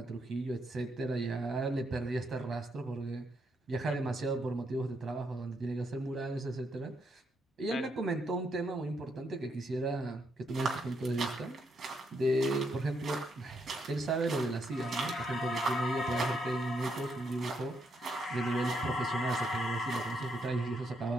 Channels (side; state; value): both; normal; correlation 0.77